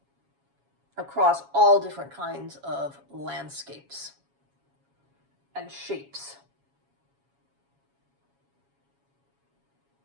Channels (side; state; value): left; late; 7.2 ms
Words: across all different kinds of landscapes and shapes.